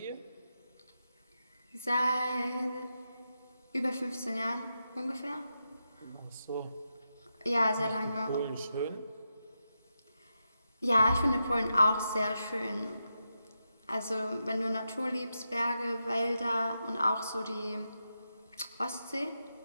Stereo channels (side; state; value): both; inverted; correlation -0.87